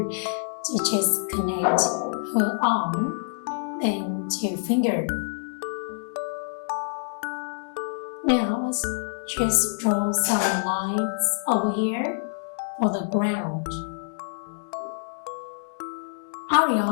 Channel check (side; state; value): right; silent; digital silence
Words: to just connect her arm, then two fingers. Now let's just draw some lines over here for the ground.